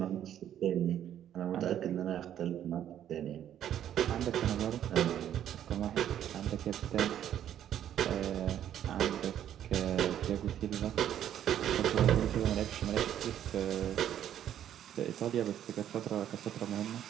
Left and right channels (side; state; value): left; quieter; 10.6 dB